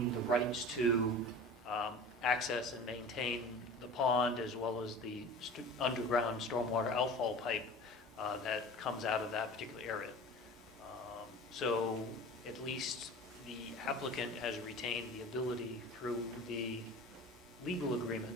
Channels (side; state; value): both; normal; correlation 0.38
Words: the rights to access and maintain the pond, as well as the underground stormwater outfall pipe that comes out of that particular area. So at least the applicant has retained the ability through the legal